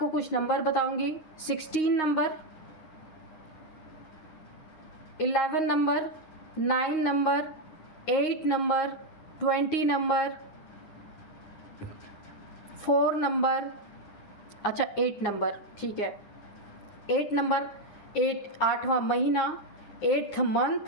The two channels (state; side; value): late; right; 10 ms